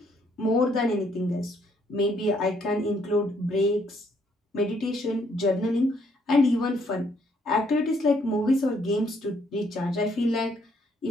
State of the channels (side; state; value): both; normal; correlation 0.69